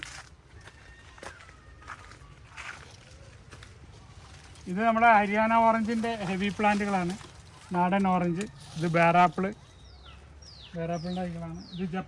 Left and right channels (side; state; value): both; identical; correlation 1.00